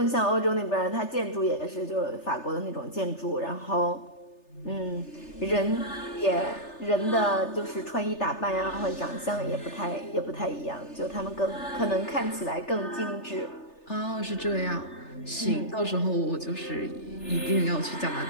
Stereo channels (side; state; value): right; late; 3.3 ms